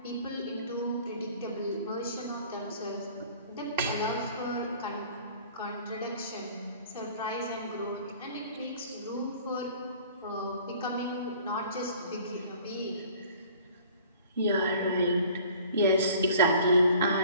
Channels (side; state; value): both; inverted; correlation -0.50